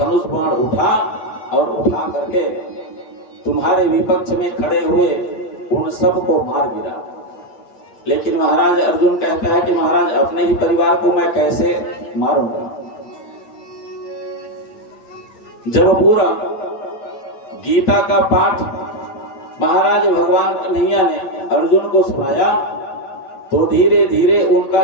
बाण उठा और उठा करके तुम्हारे विपक्ष में खड़े हुए उन सबको मार गिरा। लेकिन महाराज अर्जुन कहता है कि महाराज अपने ही परिवार को मैं कैसे मारूंगा। जब पूरा गीता का पाठ महाराज भगवान कन्हैया ने अर्जुन को सुनाया तो धीरे धीरे उनका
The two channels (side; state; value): right; late; 8.8 ms